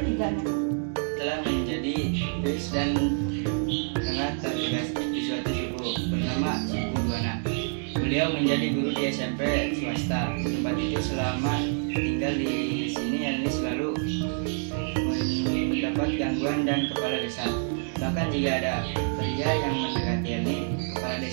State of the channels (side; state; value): left; silent; 60 dB below the other